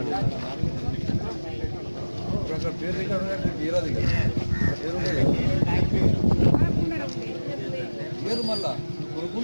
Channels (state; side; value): inverted; both; correlation -1.00